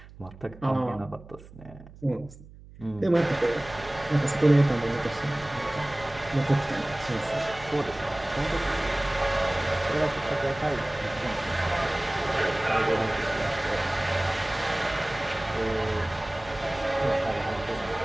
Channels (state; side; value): noise; right; hum, 19 dB below the sound